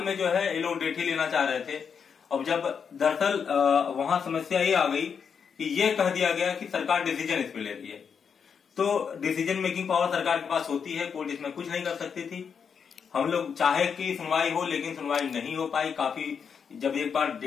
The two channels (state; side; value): quieter; right; 6.7 dB